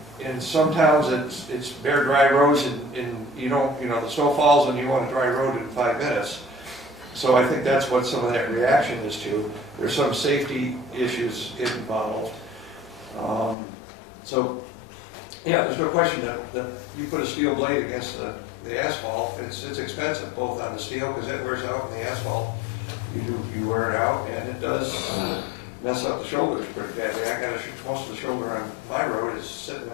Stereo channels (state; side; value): drops out; right; at 13.6 s